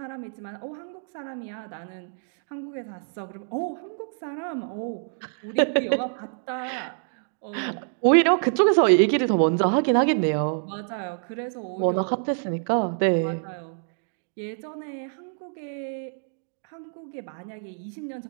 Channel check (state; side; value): silent; left; digital silence